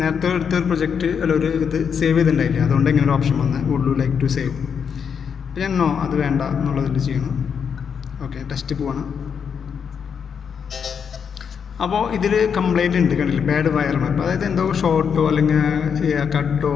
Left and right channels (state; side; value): quieter; right; 6.9 dB